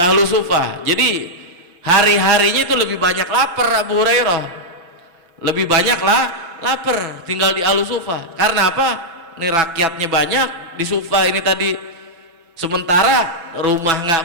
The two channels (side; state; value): left; late; 6.0 ms